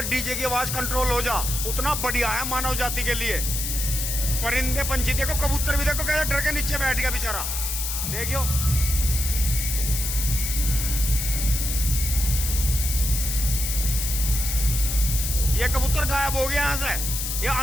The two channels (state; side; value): noise; left; hiss, 3 dB below the sound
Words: डीजे की आवाज कंट्रोल हो जा उतना बढ़िया है मानव जाति के लिए। परिंदे पंछी देखो, कबूतर भी देखो कैसे डर के नीचे बैठ गया बेचारा, देखियो। ये कबूतर गायब हो गया यहाँ से, ये